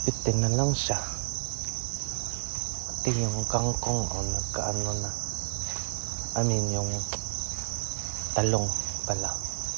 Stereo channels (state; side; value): silent; left; 58 dB below the other